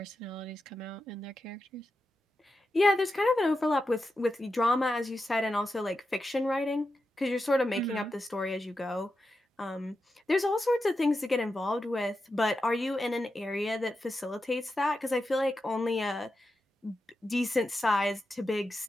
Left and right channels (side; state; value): both; normal; correlation 0.89